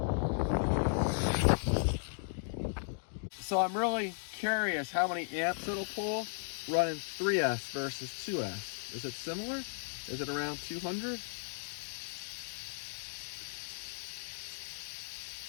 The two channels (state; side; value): silent; right; digital silence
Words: So I'm really curious how many amps it'll pull running 3S versus 2S. Is it similar? Is it around 200?